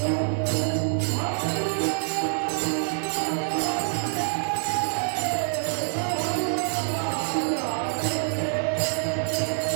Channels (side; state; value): left; silent; digital silence